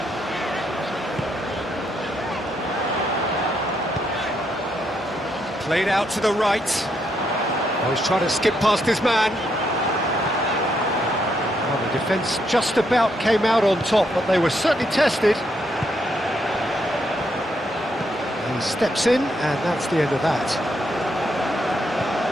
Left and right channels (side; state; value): both; normal; correlation 0.77